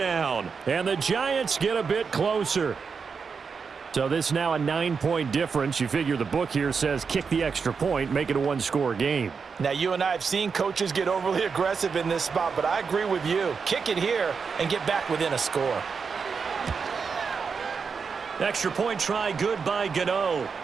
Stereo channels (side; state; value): left; quieter; 5.6 dB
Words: And the Giants get a bit closer. So this is now a 9-point difference. You figure the book here says kick the extra point, make it a one-score game. Now, you and I have seen coaches get overly aggressive in this spot, but I agree with you. Kick it here and get back within a score. Extra point try good by Gano